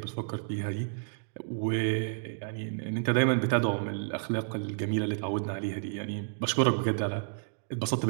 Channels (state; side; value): silent; left; digital silence